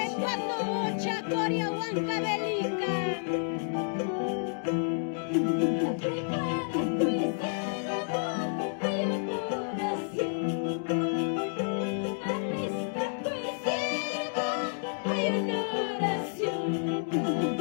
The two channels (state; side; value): silent; right; digital silence